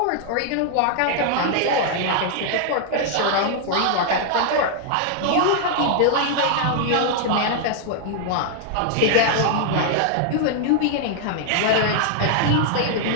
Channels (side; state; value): both; different; correlation -0.01